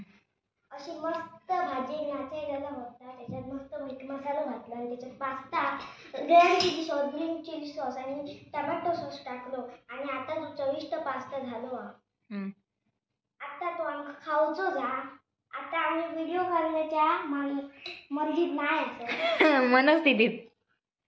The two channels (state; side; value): identical; both; correlation 1.00